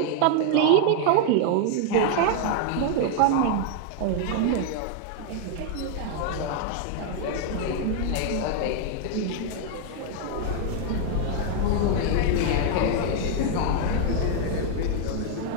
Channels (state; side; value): different; both; correlation 0.00